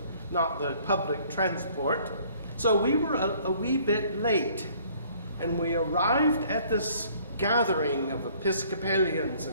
not the public transport. So we were a wee bit late, and we arrived at this gathering of Episcopalians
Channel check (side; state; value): both; inverted; correlation -0.58